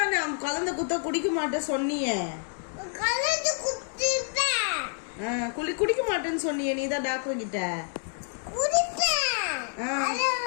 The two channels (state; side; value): silent; right; 57 dB below the other